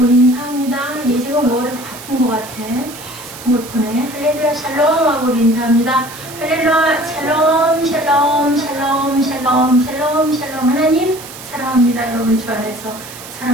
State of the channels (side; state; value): right; noise; hiss, 15 dB below the sound